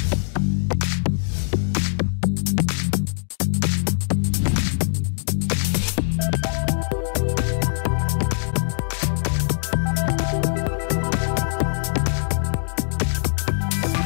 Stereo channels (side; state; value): right; silent; digital silence